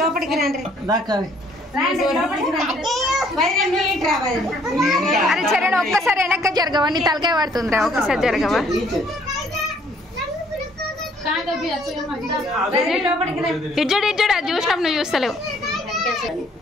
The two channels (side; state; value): both; normal; correlation 0.62